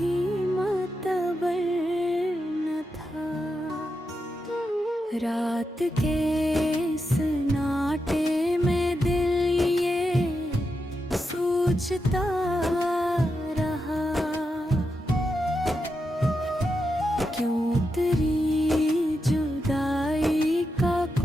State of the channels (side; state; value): both; normal; correlation 0.87